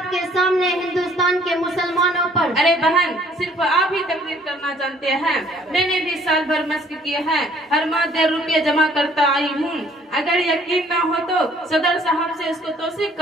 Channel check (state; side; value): normal; both; correlation 0.59